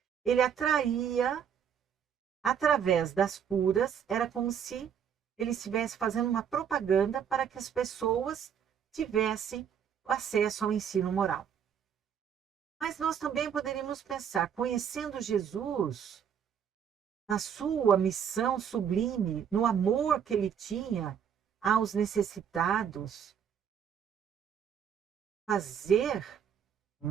Ele atraía, através das curas, era como se ele estivesse fazendo uma propaganda para que as pessoas tivessem acesso ao ensino moral. Mas nós também poderíamos pensar, conhecendo Jesus, na sua missão sublime, no amor que ele tinha aos necessitados, fazer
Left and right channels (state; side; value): quieter; left; 8.1 dB